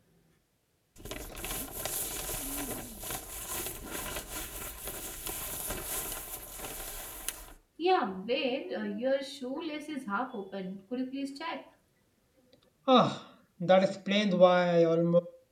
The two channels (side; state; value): both; identical; correlation 1.00